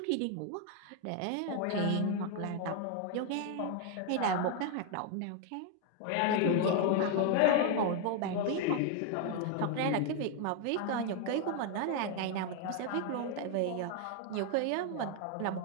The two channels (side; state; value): both; different; correlation 0.00